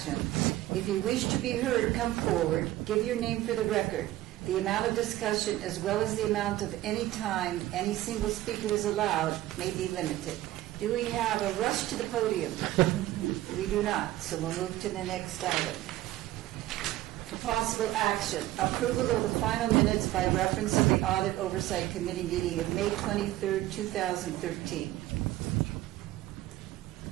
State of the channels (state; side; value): quieter; left; 15.5 dB